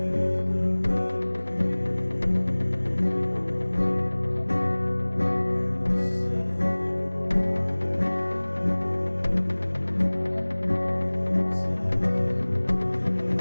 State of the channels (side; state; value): both; inverted; correlation -1.00